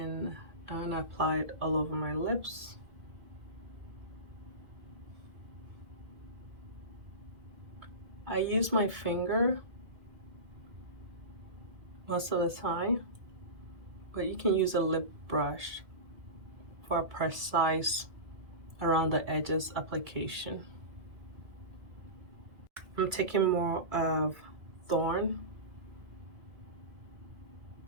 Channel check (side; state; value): left; late; 2.3 ms